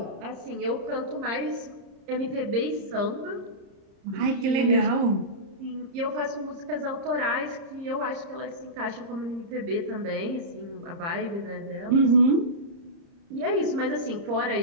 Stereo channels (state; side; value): late; left; 30 ms